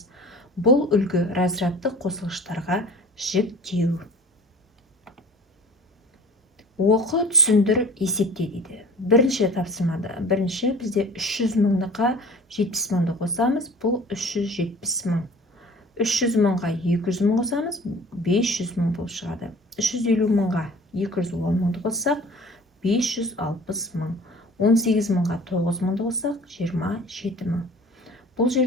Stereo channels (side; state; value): both; normal; correlation 0.45